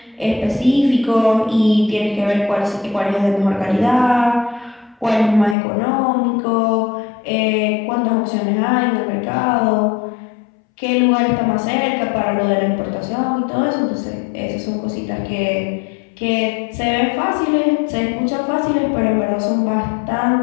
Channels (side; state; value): right; drops out; at 5.6 s